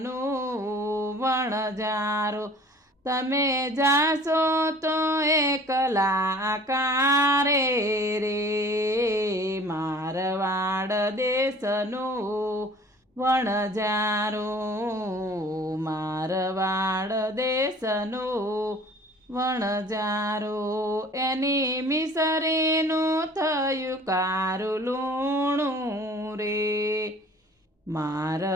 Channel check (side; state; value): both; normal; correlation 0.49